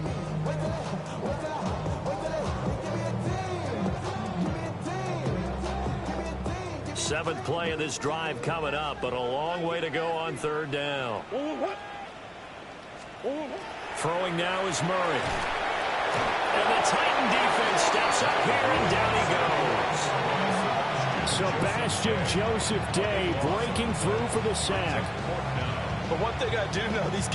Seventh play of this drive coming up, but a long way to go on third down. Throwing now is Murray. And the Titan defense steps up here, and down he goes. Sebastian Joseph Day breaking through for the sack. But one thing I do know, these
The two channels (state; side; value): identical; both; correlation 1.00